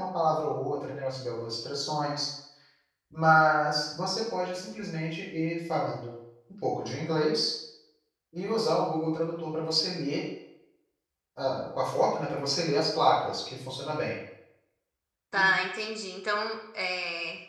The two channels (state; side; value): identical; both; correlation 1.00